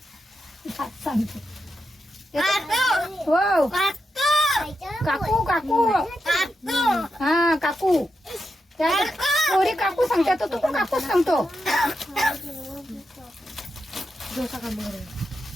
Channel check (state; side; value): normal; both; correlation 0.86